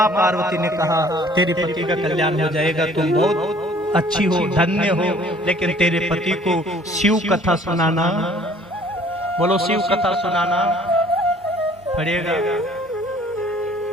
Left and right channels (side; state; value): both; normal; correlation 0.55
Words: पार्वती ने कहा, तेरे पति का कल्याण हो जाएगा, तुम बहुत अच्छी हो, धन्य हो, लेकिन तेरे पति को शिव कथा सुनाना, बोलो शिव कथा सुनाना पड़ेगा।